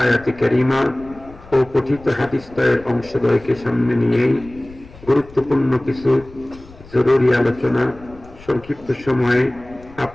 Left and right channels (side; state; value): left; noise; rumble, 21 dB below the sound